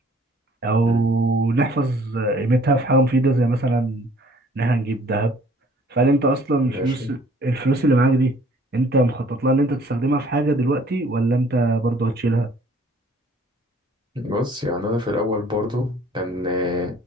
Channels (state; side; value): normal; both; correlation 0.56